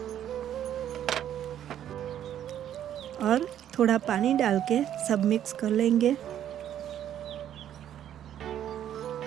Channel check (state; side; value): quieter; left; 10.7 dB